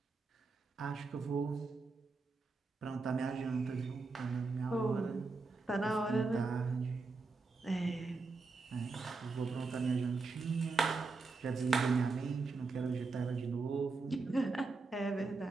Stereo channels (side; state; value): left; quieter; 4.0 dB